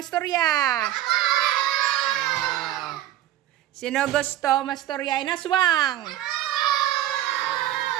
Sino gusto mastorya inaswang?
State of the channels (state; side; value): quieter; left; 13.3 dB